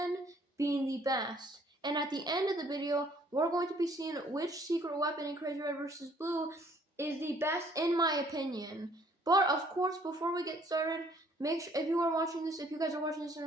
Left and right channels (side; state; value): both; normal; correlation 0.61